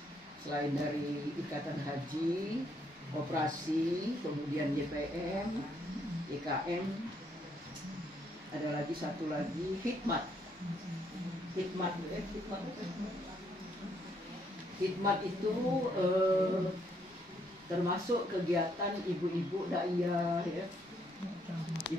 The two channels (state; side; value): normal; both; correlation 0.72